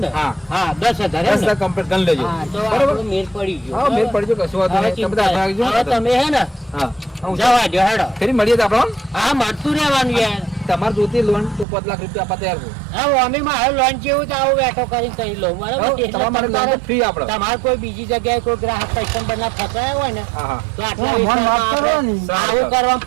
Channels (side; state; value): left; drops out; at 11.7 s